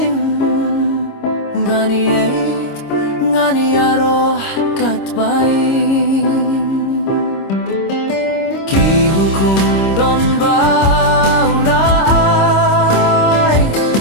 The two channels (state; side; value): late; right; 26 ms